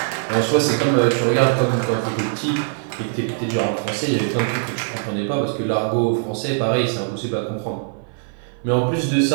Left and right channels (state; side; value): silent; left; 56 dB below the other